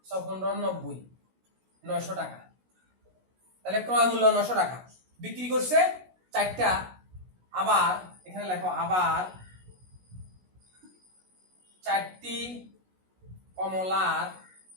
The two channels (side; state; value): left; late; 16 ms